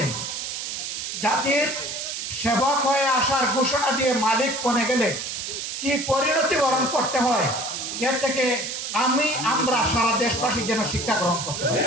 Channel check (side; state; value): right; noise; hiss, 5 dB below the sound